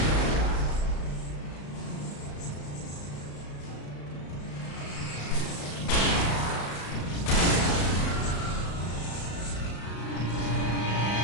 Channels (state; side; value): late; right; 35 ms